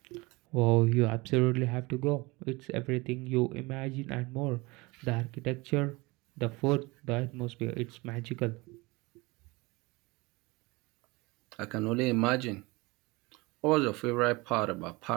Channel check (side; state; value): left; quieter; 24.0 dB